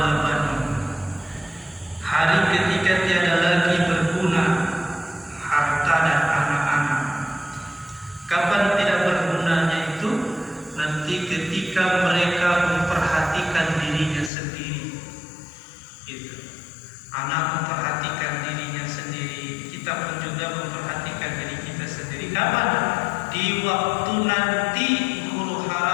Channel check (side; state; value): right; drops out; at 14.3 s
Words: banun. Hari ketika tiada lagi berguna harta dan anak-anak. Kapan tidak bergunanya itu? Nanti ketika mereka memperhatikan dirinya sendiri. Gitu. Anak memperhatikan dirinya sendiri, kita pun juga memperhatikan diri kita sendiri. Kapan? Di waktu nanti huru